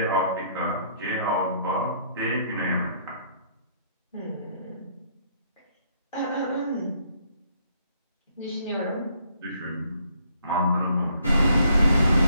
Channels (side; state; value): both; inverted; correlation -0.67